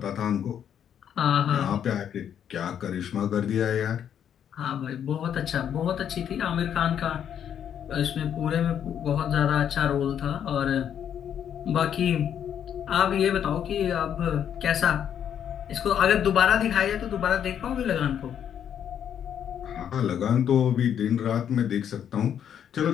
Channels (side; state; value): right; quieter; 9.1 dB